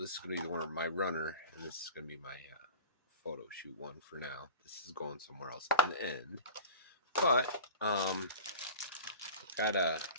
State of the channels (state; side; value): inverted; both; correlation -0.32